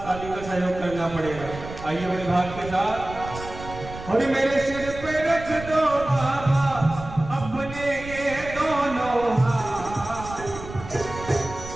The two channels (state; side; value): noise; right; rumble, 12 dB below the sound